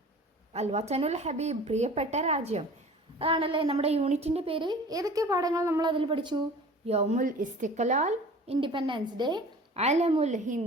അൽ വതനുൽ ഹബീബ്, പ്രിയപ്പെട്ട രാജ്യം. അതാണല്ലേ നമ്മുടെ യൂണിറ്റിൻ്റെ പേര്. ഏതൊക്കെ പാഠങ്ങൾ നമ്മൾ അതിൽ പഠിച്ചു? യൗമുൽ ഇസ്തിഖ്ലാൽ, ഇൻഡിപെൻഡൻസ് ഡേ, അലമുൽ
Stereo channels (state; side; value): normal; both; correlation 0.43